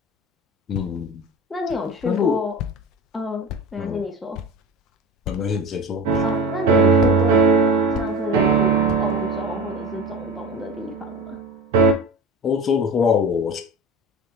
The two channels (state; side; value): normal; both; correlation 0.32